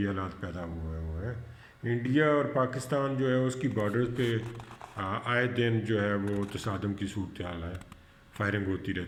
حالات پیدا ہوئے ہیں، انڈیا اور پاکستان جو ہے اس کی بارڈرز پہ آئے دن جو ہے وہ تصادم کی صورتحال ہے، فائرنگ ہوتی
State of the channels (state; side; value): identical; both; correlation 1.00